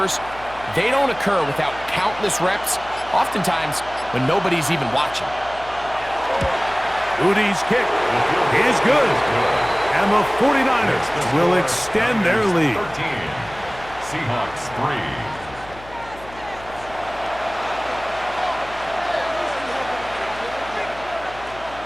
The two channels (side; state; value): left; noise; hum, 19 dB below the sound